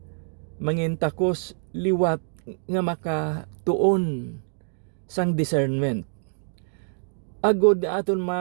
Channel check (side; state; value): left; silent; digital silence